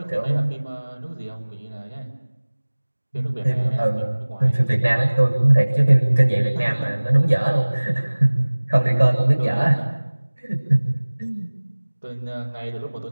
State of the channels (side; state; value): both; inverted; correlation -1.00